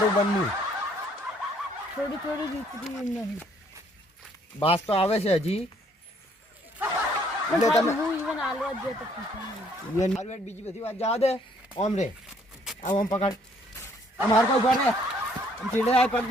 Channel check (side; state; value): both; normal; correlation 0.64